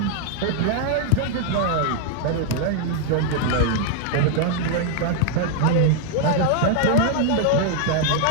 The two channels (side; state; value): both; different; correlation -0.01